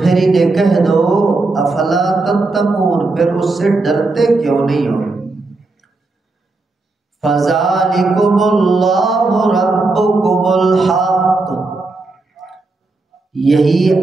انہیں کہہ دو افلا تتقون، پھر اس سے ڈرتے کیوں نہیں ہو۔ فذالکم اللہ ربکم الحق، یہی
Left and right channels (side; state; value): left; quieter; 3.4 dB